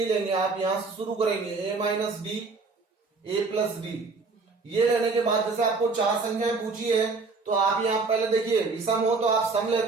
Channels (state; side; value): quieter; left; 4.1 dB